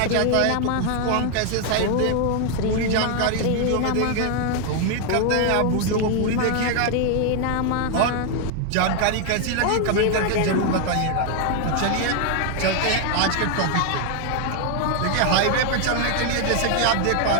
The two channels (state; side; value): different; both; correlation 0.00